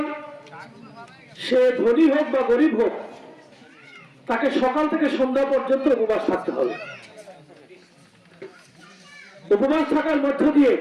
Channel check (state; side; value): identical; both; correlation 1.00